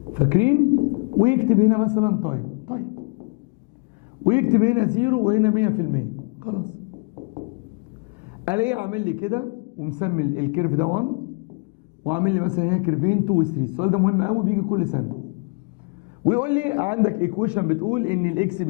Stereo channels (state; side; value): quieter; right; 35.3 dB